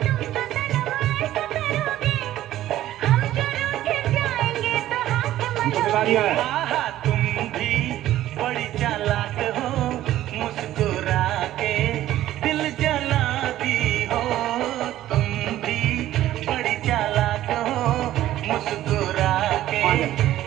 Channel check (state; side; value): quieter; left; 13.7 dB